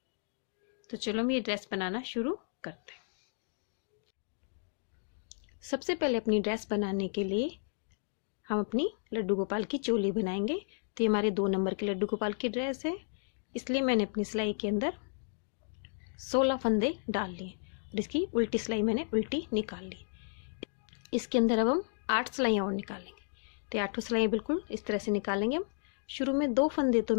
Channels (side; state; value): right; silent; digital silence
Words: तो चलो हम ये ड्रेस बनाना शुरू करते हैं। सबसे पहले अपनी ड्रेस बनाने के लिए हम अपनी लड्डू गोपाल की चोली बनाएंगे। तो ये हमारे 2 नंबर के लड्डू गोपाल की ड्रेस है, इसलिए मैंने अपनी सिलाई के अंदर 16 फंदे डाल लिए और इसकी उल्टी सिलाई मैंने उल्टी निकाल ली। इसके अंदर अब हम 8 सिलाइयाँ और निकालेंगे। तो 8 सिलाइयाँ बिल्कुल इस तरह से निकालेंगे हम। शुरू में 2 फंदे तो